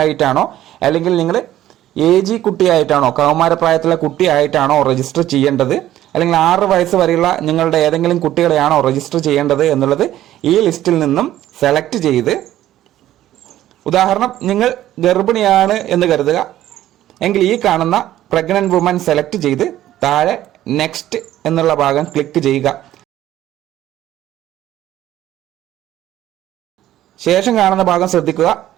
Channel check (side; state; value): left; quieter; 13.3 dB